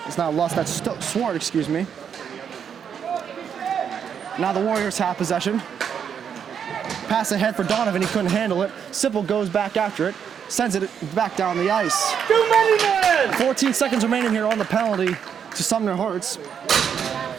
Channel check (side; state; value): left; quieter; 7.8 dB